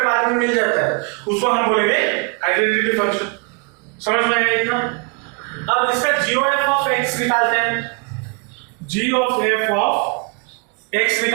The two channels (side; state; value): left; quieter; 33.0 dB